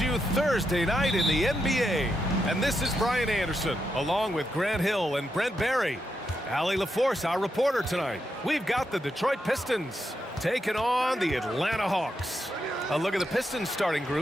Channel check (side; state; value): both; normal; correlation 0.84